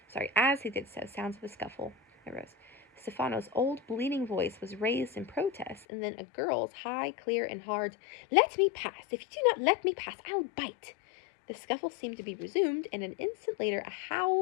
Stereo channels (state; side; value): drops out; right; at 5.9 s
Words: As he did so, sounds of a scuffle arose. Stefano's old bleeding voice was raised in protest, and then a girl's high, clear, and hard, "Let me pass! If you do not let me pass, I'll bite!" The scuffle seemed to be resumed, and an instant later a